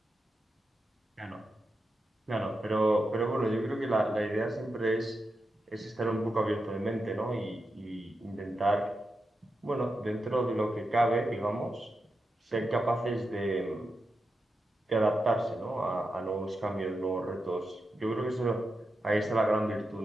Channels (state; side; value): normal; both; correlation 0.88